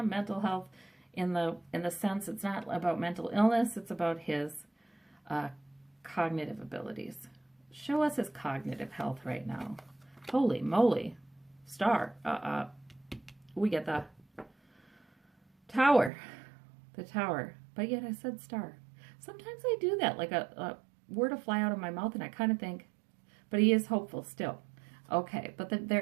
mental health in the sense it's not about mental illness. It's about his cognitive abilities. Show us his cognitive health right now. Holy moly. Star. We get the tower. The tower. But yet I said star. Sometimes I do that, like a word will fly out of my mouth and I kind of think, but he is hopeful still. Okay, but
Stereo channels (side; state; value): left; drops out; at 16.1 s